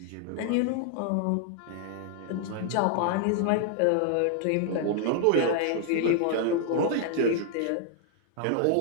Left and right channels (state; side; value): different; both; correlation 0.00